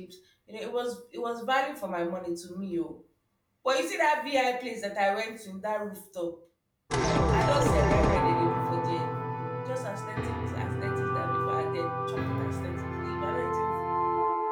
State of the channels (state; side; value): identical; both; correlation 1.00